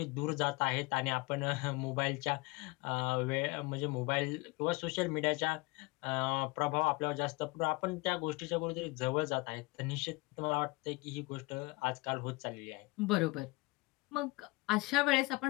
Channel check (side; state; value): right; quieter; 24.2 dB